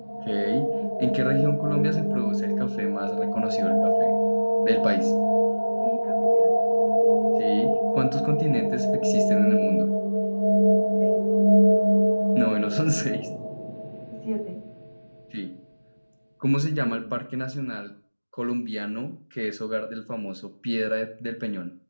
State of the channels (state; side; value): inverted; both; correlation -1.00